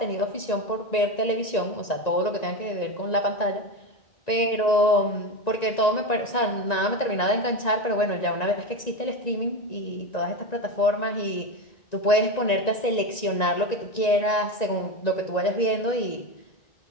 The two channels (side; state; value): right; late; 1.9 ms